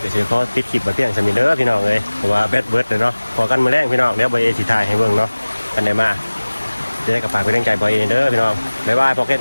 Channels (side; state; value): both; inverted; correlation -1.00